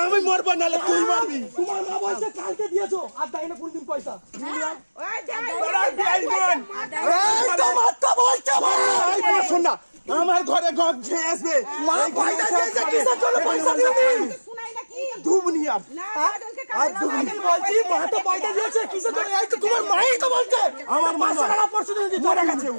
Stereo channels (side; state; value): both; inverted; correlation -1.00